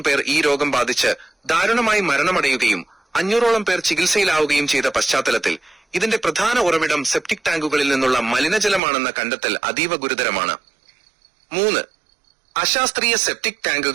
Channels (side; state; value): left; drops out; at 8.8 s